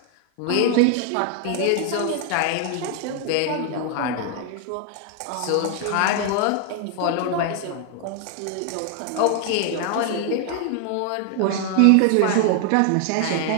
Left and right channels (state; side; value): different; both; correlation 0.00